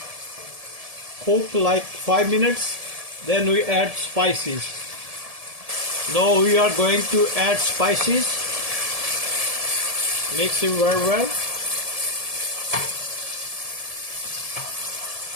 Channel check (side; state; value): left; late; 1.7 ms